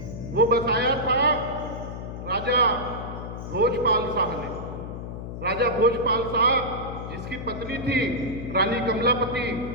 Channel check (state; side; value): noise; left; hum, 8 dB below the sound